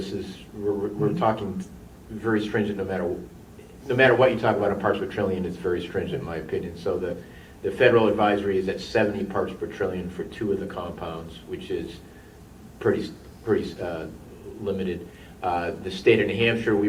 is, we're talking very stringent no matter what you talk about in parts per trillion, it's very stringent in my opinion. So the federal advisory is at 70 parts per trillion for 2 of the compounds, which is pretty limited. The state of New Hampshire,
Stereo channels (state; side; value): identical; both; correlation 1.00